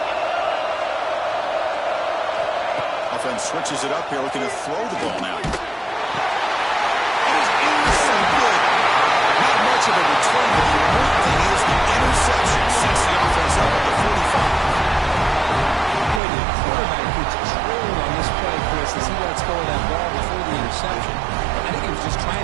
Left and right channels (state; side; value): drops out; left; at 16.2 s